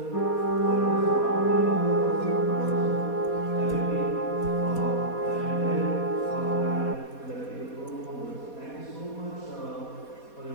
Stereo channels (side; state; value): right; late; 4.2 ms